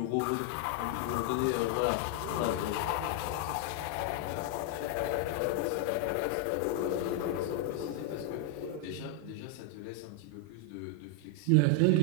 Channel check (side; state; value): both; different; correlation 0.01